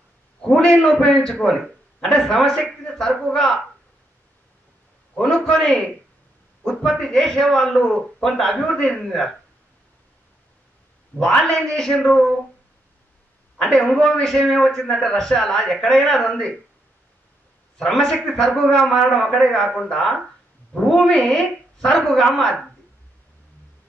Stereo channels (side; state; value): both; normal; correlation 0.78